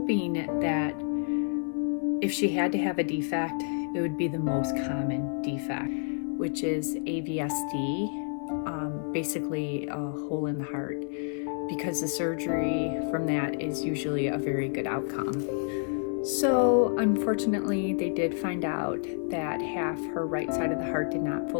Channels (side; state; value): right; silent; 58 dB below the other